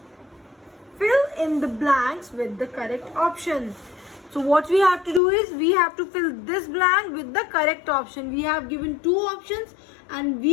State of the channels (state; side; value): drops out; right; at 5.2 s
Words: Fill in the blanks with the correct option. So what we have to do is we have to fill this blank with the correct option. We have given two options and